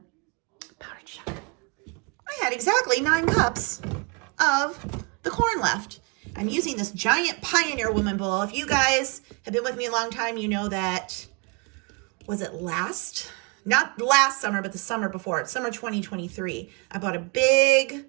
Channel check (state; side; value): quieter; left; 32.8 dB